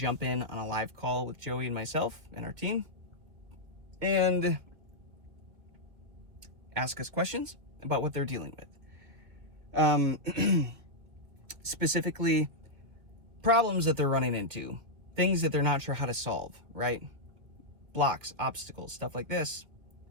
in on a live call with Joey and myself and our team and ask us questions about what they're dealing with. Specifically, problems that they're running into, things that they're not sure how to solve, right? Blocks, obstacles, stuff like this.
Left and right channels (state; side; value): late; left; 2.4 ms